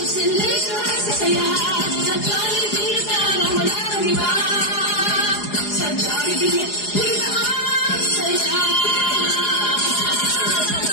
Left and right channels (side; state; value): right; late; 4.8 ms